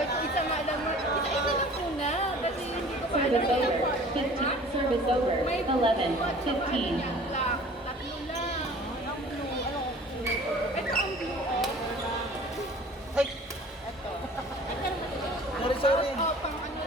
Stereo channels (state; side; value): normal; both; correlation 0.47